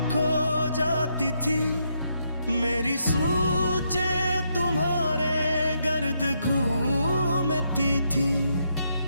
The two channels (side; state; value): both; inverted; correlation -0.77